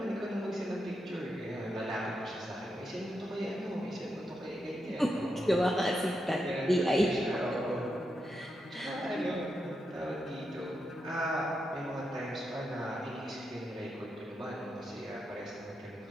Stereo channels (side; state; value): both; normal; correlation 0.85